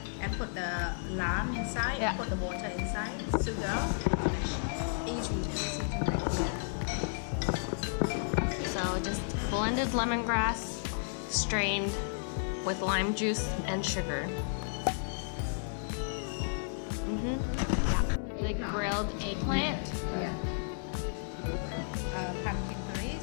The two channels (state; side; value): silent; right; digital silence